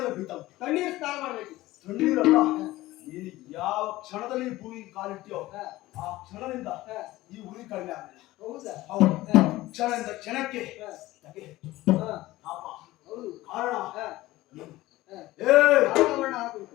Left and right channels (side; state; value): right; quieter; 17.5 dB